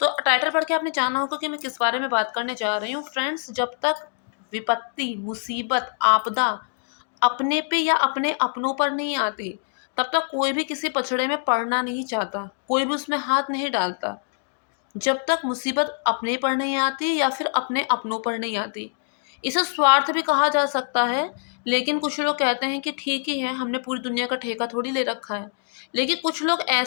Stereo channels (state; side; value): silent; right; digital silence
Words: टाइटल पढ़ के आपने जाना होगा कि मैं किस बारे में बात करने जा रही हूँ। फ्रेंड्स, जब तक विपत्ति, मुसीबत, आपदा अपने पे या अपने अपनों पर नहीं आती, तब तक कोई भी किसी पछड़े में पड़ना नहीं चाहता, कोई भी उसमें हाथ नहीं डालता। जब तक मुसीबत अपने पर नहीं आती या फिर अपने अपनों पर नहीं आती। इसे स्वार्थ भी कहा जा सकता है, लेकिन कुछ लोग कहते हैं कि ठीक ही है, हमने पूरी दुनिया का ठेका थोड़ी ले रखा है। लेकिन कुछ लोग